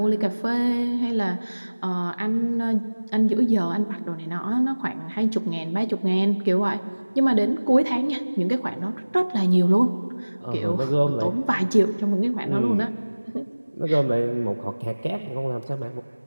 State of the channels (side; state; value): both; inverted; correlation -1.00